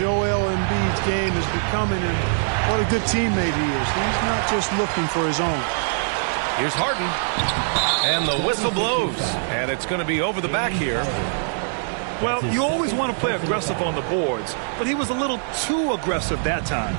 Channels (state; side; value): silent; left; digital silence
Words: Embiid's game is becoming and what a good teammate he is. He's not just looking for his own. Here's Harden. And the whistle blows. And it's going to be over the back here. Well, you always want to play aggressive on the boards, but he was a little too aggressive that time.